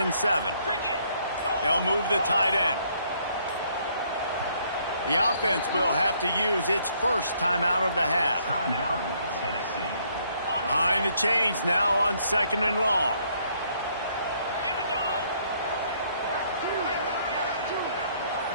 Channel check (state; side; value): inverted; both; correlation -0.67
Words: 7. They'll move the tight end. The offense will have to use its first timeout of the half. Timeout, Tennessee. Behind the chains now on 2nd and long.